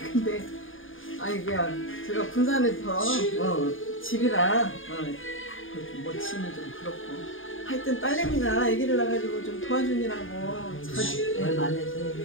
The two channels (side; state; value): right; late; 0.58 ms